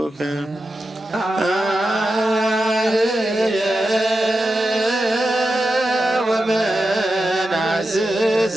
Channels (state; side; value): normal; both; correlation 0.90